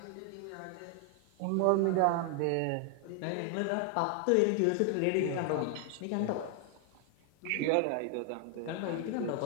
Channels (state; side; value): different; both; correlation 0.00